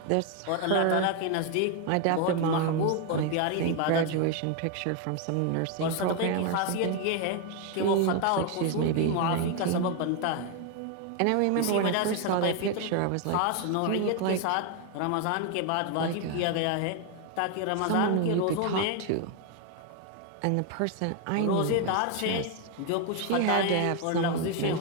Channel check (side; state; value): both; different; correlation 0.01